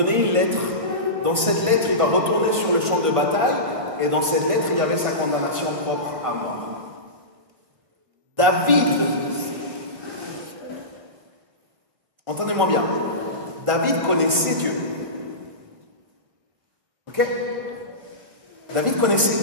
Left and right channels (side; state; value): left; late; 1.7 ms